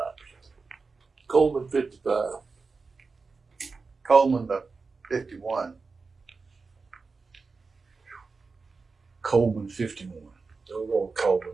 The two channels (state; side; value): quieter; left; 4.4 dB